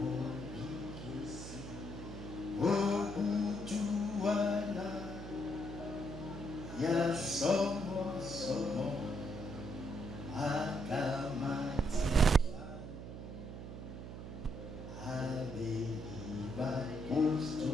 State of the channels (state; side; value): noise; right; hum, 9 dB below the sound